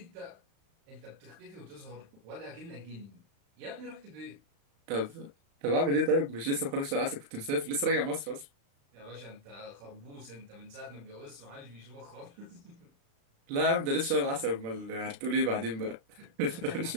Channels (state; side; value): late; left; 35 ms